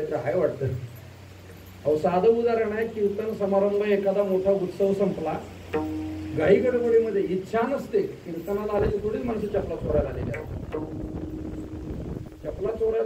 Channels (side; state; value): both; identical; correlation 1.00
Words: आहे वाटतं. अहो साधं उदाहरण आहे, कीर्तन समारंभ एखादा मोठा उत्सव संपला, घाई गडबडीमध्ये इच्छा नसते, कीर्तनाला आलेली थोडीच माणसं चपला चोरायला आलेली आहेत. चपला